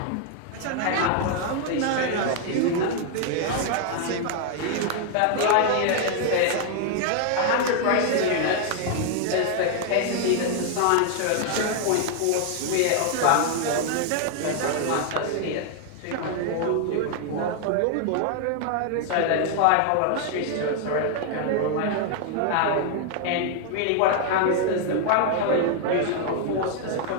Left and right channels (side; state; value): both; different; correlation 0.00